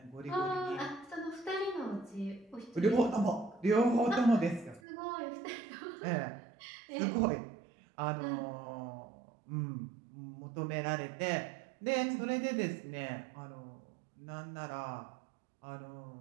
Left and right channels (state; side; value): drops out; left; at 4.8 s